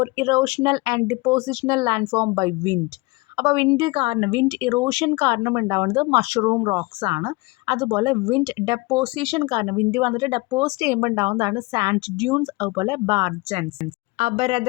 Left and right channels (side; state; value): right; quieter; 24.6 dB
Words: erosional and depositional landform by wind. അപ്പോൾ വിൻഡ് ഇറോഷൻ കാരണം ഉണ്ടാവുന്നത് മഷ്റൂം റോക്സ് ആണ്. അതുപോലെ വിൻഡ് ഡെപ്പോസിഷൻ കാരണം വിൻഡ് വന്നിട്ട് ഡെപ്പോസിറ്റ് ചെയ്യുമ്പോൾ ഉണ്ടാവുന്നതാണ് സാൻഡ് ഡ്യൂൺസ്, അതുപോലെ ബാർജൻസ്.